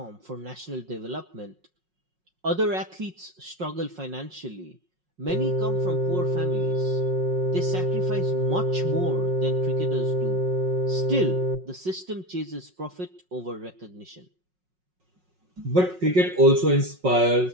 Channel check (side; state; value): left; late; 5.5 ms